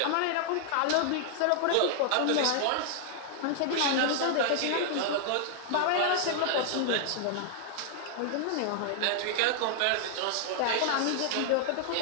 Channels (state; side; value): different; both; correlation -0.01